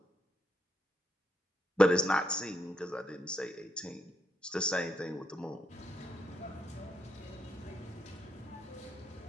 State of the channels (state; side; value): normal; both; correlation 0.77